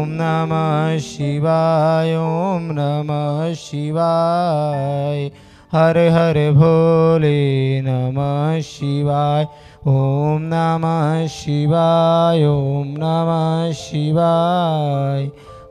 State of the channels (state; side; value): identical; both; correlation 1.00